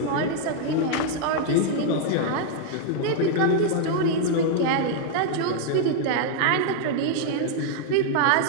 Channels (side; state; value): both; different; correlation 0.00